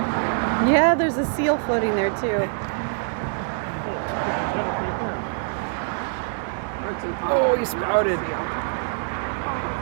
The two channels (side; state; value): left; silent; 62 dB below the other